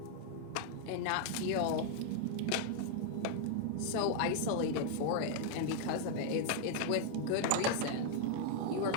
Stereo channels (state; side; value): different; both; correlation 0.00